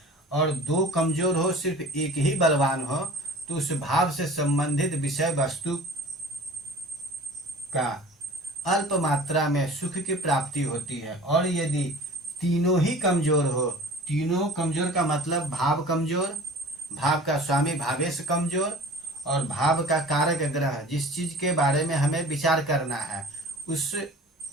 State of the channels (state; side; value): normal; both; correlation 0.43